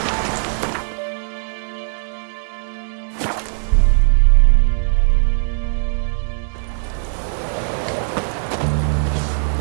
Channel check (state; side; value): silent; left; 63 dB below the other